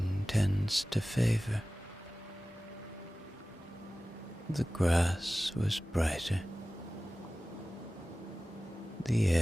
tends to favor. The grass was brighter, the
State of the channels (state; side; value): normal; both; correlation 0.97